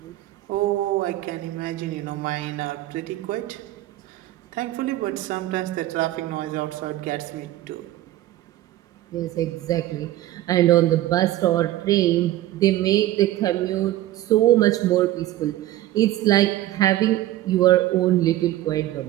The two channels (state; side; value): quieter; left; 14.7 dB